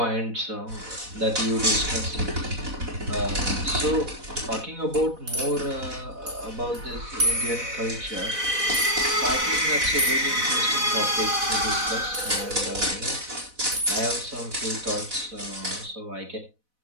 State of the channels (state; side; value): late; left; 4.0 ms